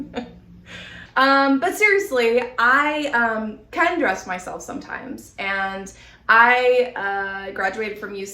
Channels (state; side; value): identical; both; correlation 1.00